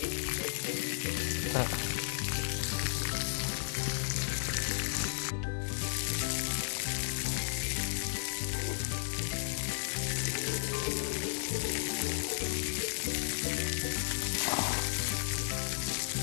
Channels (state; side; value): silent; right; digital silence